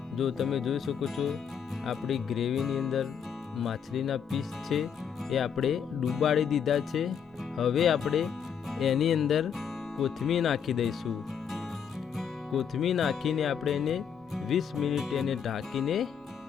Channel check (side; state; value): right; quieter; 7.5 dB